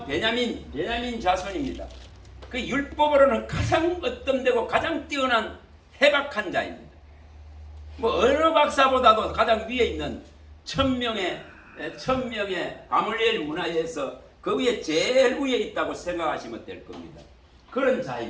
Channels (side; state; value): both; identical; correlation 1.00